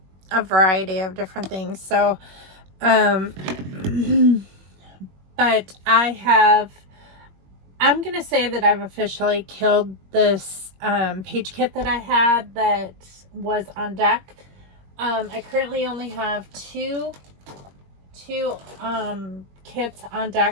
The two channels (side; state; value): left; late; 21 ms